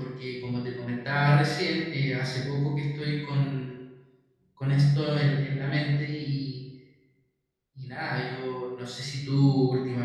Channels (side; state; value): both; identical; correlation 1.00